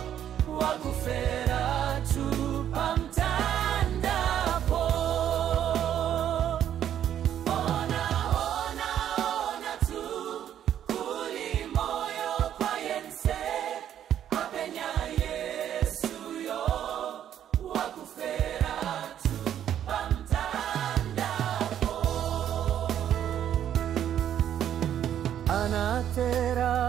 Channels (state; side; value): quieter; left; 10.3 dB